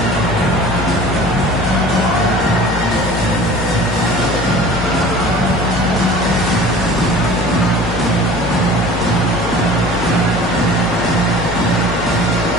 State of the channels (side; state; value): both; normal; correlation 0.43